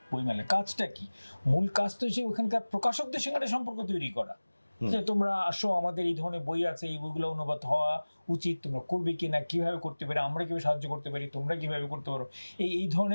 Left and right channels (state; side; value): inverted; both; correlation -1.00